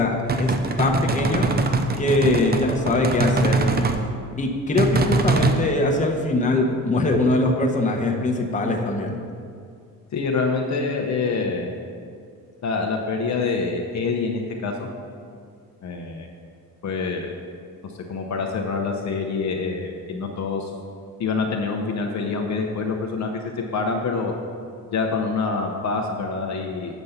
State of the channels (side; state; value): both; normal; correlation 0.36